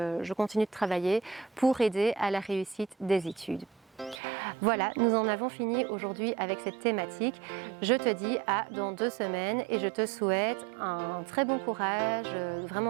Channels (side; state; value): left; drops out; at 4.2 s